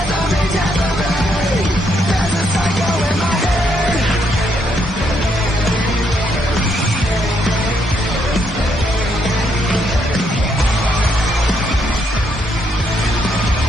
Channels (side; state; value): both; normal; correlation 0.75